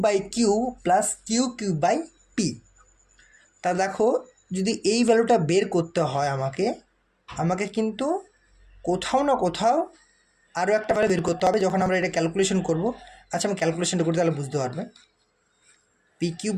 by q plus q q by p. তা দেখো যদি এই ভ্যালুটা বের করতে হয় আমাকে, আমাকে কিন্তু কোথাও না কোথাও আরও একটা ভ্যালু বের করতে হবে যখন আমরা এটা ক্যালকুলেশন করব। আচ্ছা, আমি ক্যালকুলেশনটা করতে তাহলে বুঝতে পারবে। P cube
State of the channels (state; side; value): identical; both; correlation 1.00